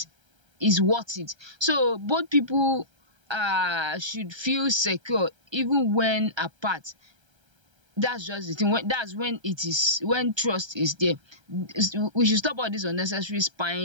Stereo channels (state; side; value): late; left; 1.3 ms